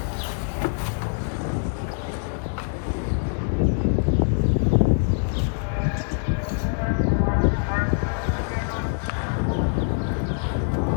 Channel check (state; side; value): silent; right; 62 dB below the other